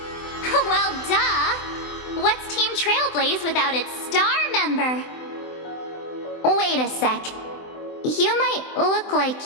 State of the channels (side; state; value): right; late; 24 ms